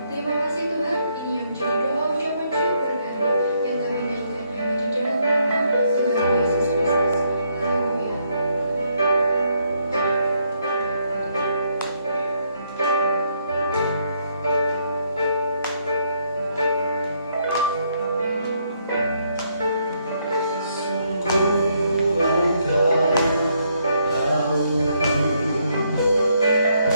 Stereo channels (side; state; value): both; inverted; correlation -0.74